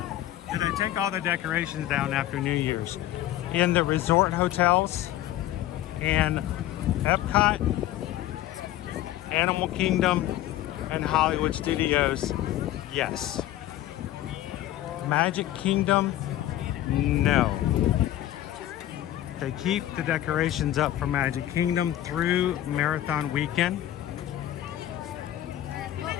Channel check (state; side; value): quieter; right; 13.5 dB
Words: do they take all the decorations down after New Year's? In the resort hotels and Epcot, Animal Kingdom, and Hollywood Studios, yes. Magic Kingdom, no. They keep the decorations up for Magic Kingdom through Marathon Weekend.